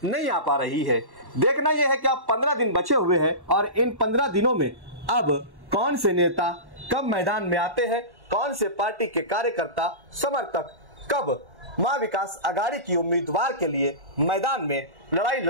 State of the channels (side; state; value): left; late; 1.1 ms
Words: नहीं आ पा रही है? देखना यह है कि अब 15 दिन बचे हुए हैं और इन 15 दिनों में अब कौन से नेता कब मैदान में आते हैं, कौन से पार्टी के कार्यकर्ता समर्थक कब महाविकास आघाड़ी की उम्मीदवार के लिए मैदान में लड़ाई